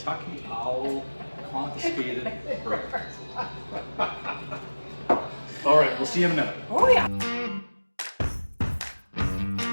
Owl Confiscated Bourbon. All right, we'll see you in a minute. Oh yeah.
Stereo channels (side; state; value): both; inverted; correlation -1.00